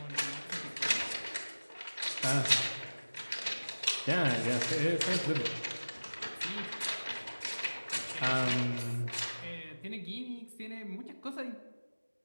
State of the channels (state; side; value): inverted; both; correlation -1.00